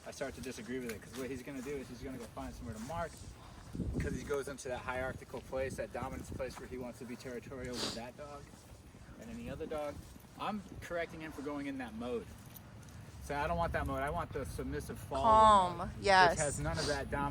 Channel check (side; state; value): both; identical; correlation 1.00